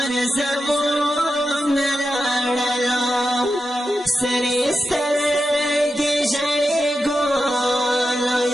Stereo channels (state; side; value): normal; both; correlation 0.89